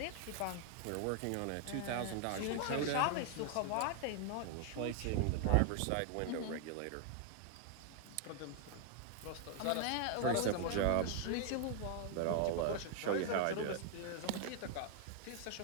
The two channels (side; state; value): both; different; correlation 0.00